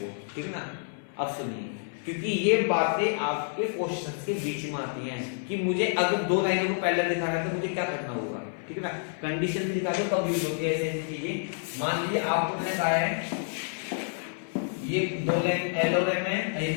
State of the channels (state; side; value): silent; right; 56 dB below the other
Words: ठीक है ना। अब सुनिए, क्योंकि ये बातें आपके क्वेश्चंस के बीच में आती हैं कि मुझे अगर 2 लाइनों को पैरेलल दिखाना है तो मुझे क्या करना होगा, ठीक है ना। कंडीशन भी दिखा दो कब यूज होती है ऐसी चीजें। मान लीजिए आपको मैंने कहा है ये 2 लाइन L और M है, ये